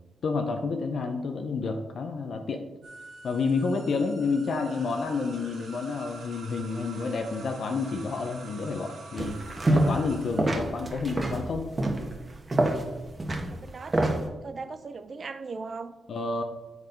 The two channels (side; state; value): both; normal; correlation 0.82